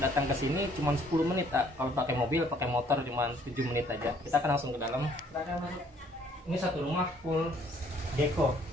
ke sini cuma 10 menit. Kalau pakai mobil, pakai motor cuma 7 menit aja. Kita akan langsung ke dalam. Ini satu rumah full Gecko,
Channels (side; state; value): both; normal; correlation 0.61